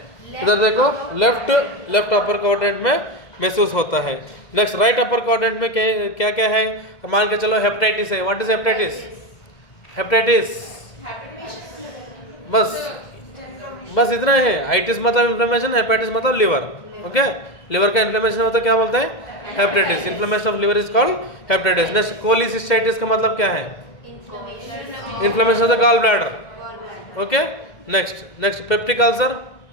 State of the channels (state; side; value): late; right; 2.1 ms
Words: इधर देखो, लेफ्ट अपर क्वाड्रेंट में महसूस होता है। नेक्स्ट, राइट अपर क्वाड्रेंट में क्या क्या है? मान के चलो हेपेटाइटिस है। What is hepatitis? बस इतना है। आइटिस मतलब इन्फ्लेमेशन, हेपेटाइटिस मतलब लिवर, ओके। लिवर का इन्फ्लेमेशन होता है, क्या बोलते हैं? Hepatitis. Inflammation of liver is called hepatitis. Next, cholecystitis का मतलब क्या है? Inflammation of the gall bladder, okay. Next, peptic ulcer.